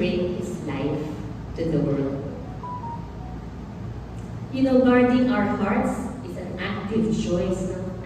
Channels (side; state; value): both; identical; correlation 1.00